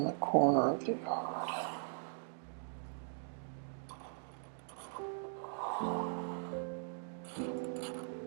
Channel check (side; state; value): left; silent; digital silence